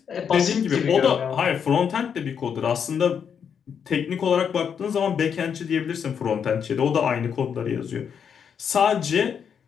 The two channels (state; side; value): quieter; right; 7.4 dB